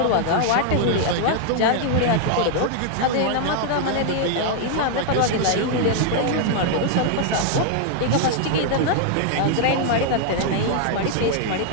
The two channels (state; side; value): different; both; correlation 0.00